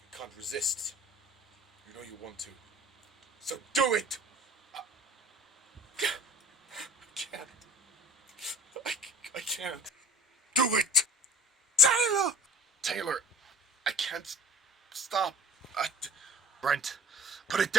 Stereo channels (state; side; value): normal; both; correlation 0.43